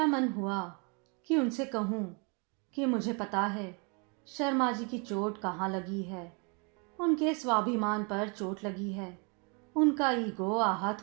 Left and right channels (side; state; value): left; quieter; 34.1 dB